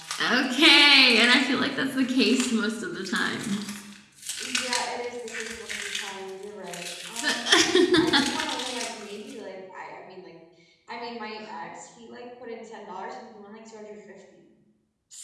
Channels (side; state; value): both; identical; correlation 1.00